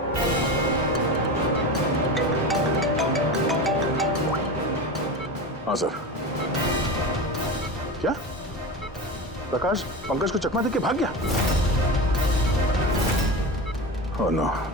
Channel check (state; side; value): normal; both; correlation 0.25